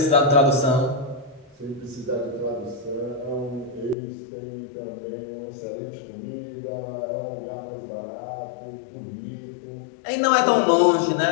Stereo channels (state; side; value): drops out; right; at 4.0 s